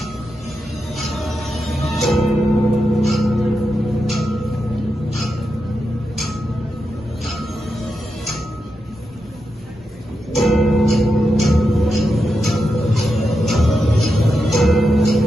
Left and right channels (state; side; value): normal; both; correlation 0.87